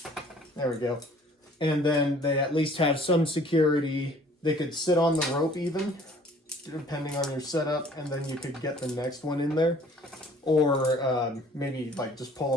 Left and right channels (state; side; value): normal; both; correlation 0.54